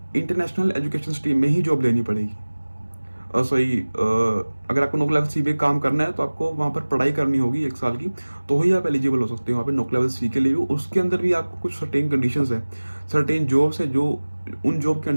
इंटरनेशनल एजुकेशन स्ट्रीम में ही जॉब लेनी पड़ेगी। सॉरी, अगर आपको नोक लेवल सी पे काम करना है तो आपको वहाँ पर पढ़ाई करनी होगी 1 साल की, तो ही आप एलिजिबल हो सकते हो वहाँ पे नोक लेवल सी के लिए भी। उसके अंदर भी आपको कुछ सर्टेन कंडीशंस है, सर्टेन जॉब्स है, जो उन जॉब के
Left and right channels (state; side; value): inverted; both; correlation -1.00